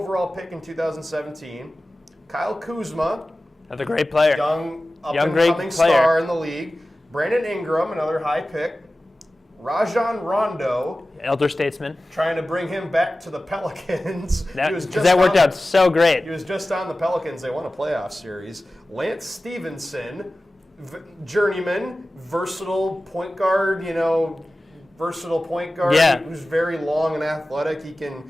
pick in 2017. Kyle Kuzma, another great player, young up-and-coming star in the league. Brandon Ingram, another high pick. Rajon Rondo, elder statesman, trying to bring him back to the Pelicans. That worked out so great. He was just on the Pelicans. They won a playoff series. Lance Stevenson, journeyman, versatile point guard, who's very long and athletic.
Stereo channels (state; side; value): normal; both; correlation 0.96